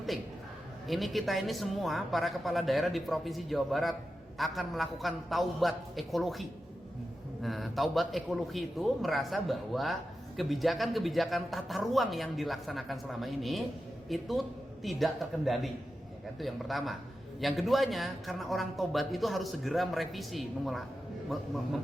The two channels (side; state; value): both; normal; correlation 0.91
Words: Ini kita ini semua para kepala daerah di Provinsi Jawa Barat akan melakukan taubat ekologi. Nah, taubat ekologi itu merasa bahwa kebijakan-kebijakan tata ruang yang dilaksanakan selama ini itu tidak terkendali. Ya kan? Itu yang pertama. Yang keduanya, karena orang tobat itu harus segera merevisi,